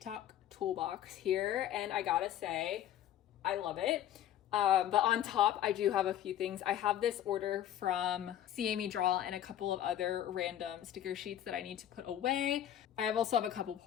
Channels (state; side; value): quieter; right; 11.4 dB